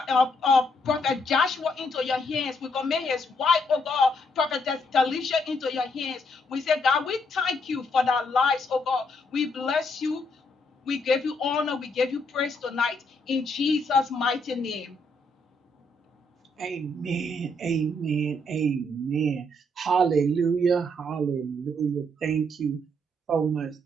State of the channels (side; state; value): both; normal; correlation 0.73